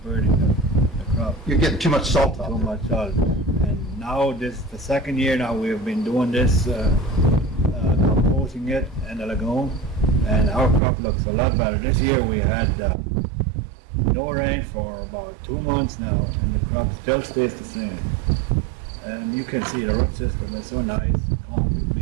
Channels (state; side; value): drops out; left; at 10.8 s